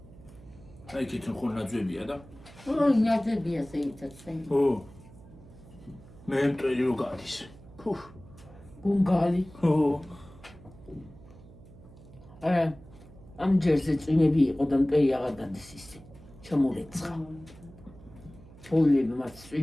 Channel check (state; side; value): noise; right; hum, 20 dB below the sound